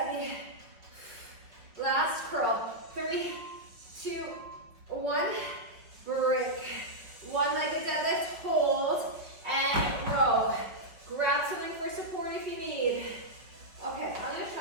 Last curl. 3, 2, 1. Break. One-legged deadlift. Hold and row. Grab something for support if you need. Okay, I'm gonna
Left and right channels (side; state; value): left; late; 5.3 ms